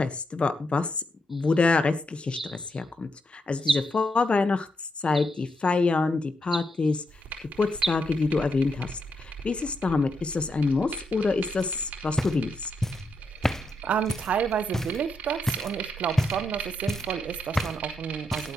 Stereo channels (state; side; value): normal; both; correlation 0.81